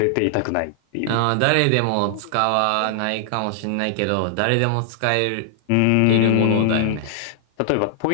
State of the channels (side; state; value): both; different; correlation -0.01